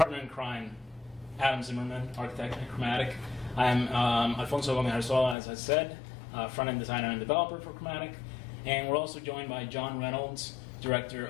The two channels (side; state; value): right; drops out; at 5.4 s